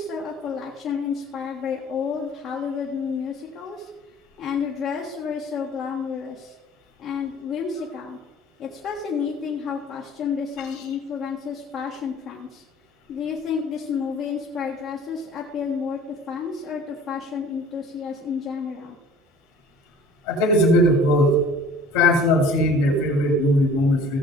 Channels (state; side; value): normal; both; correlation 0.49